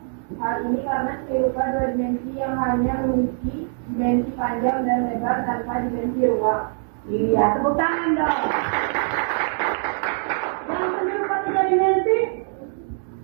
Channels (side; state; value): left; silent; 63 dB below the other